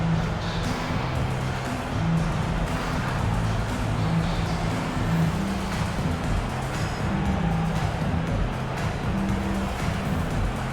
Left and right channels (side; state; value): both; identical; correlation 1.00